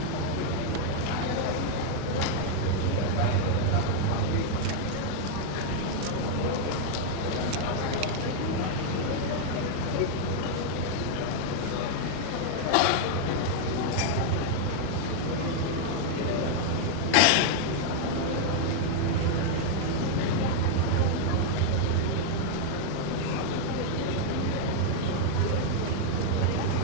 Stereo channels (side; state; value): both; different; correlation -0.01